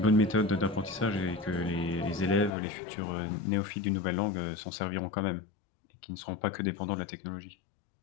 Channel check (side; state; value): right; drops out; at 2.5 s